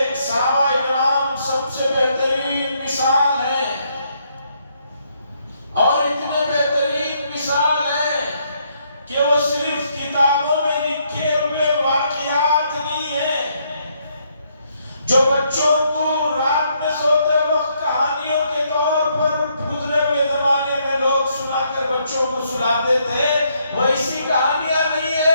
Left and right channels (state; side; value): inverted; both; correlation -0.73